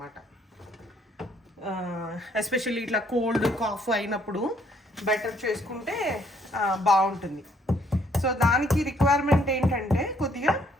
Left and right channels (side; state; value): both; normal; correlation 0.66